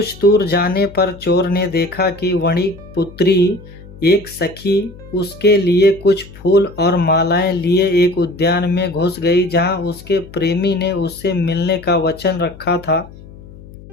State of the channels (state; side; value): noise; left; hum, 19 dB below the sound